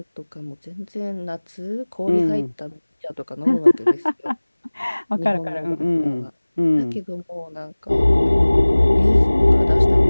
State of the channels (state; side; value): inverted; both; correlation -1.00